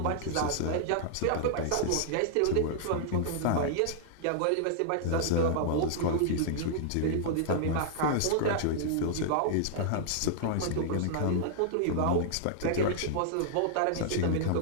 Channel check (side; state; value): both; different; correlation -0.01